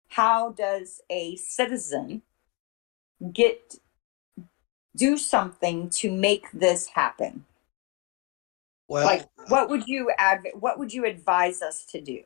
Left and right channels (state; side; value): quieter; right; 26.0 dB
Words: How does a citizen get do something to make this happen? Well, Like, what would you advise us to do?